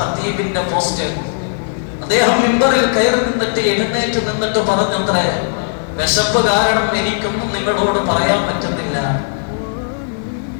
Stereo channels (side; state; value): right; silent; digital silence